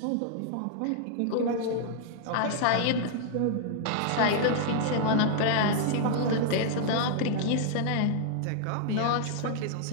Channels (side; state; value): both; different; correlation -0.01